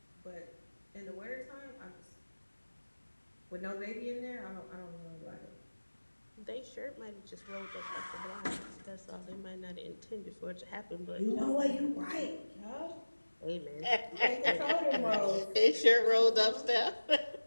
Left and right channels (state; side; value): inverted; both; correlation -1.00